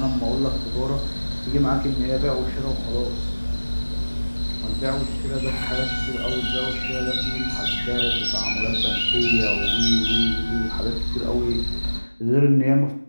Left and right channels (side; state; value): both; inverted; correlation -1.00